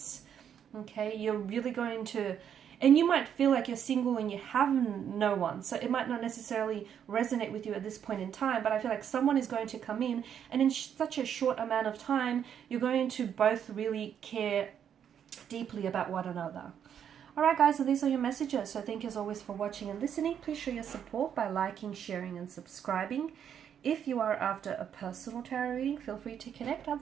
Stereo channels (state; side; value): quieter; left; 8.7 dB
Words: okay? You're really going to... And you might feel like you're single and you have no one. So it might not necessarily resonate with you at this point in time. But I feel like someone is going to come in. And in such a short amount of time, you're going to both really care deeply about one another. Alright guys, so these are your messages. So thank you as always for watching and listening. Please show your support by liking, sharing and subscribing. If you are after a personal tarot reading, feel free to connect.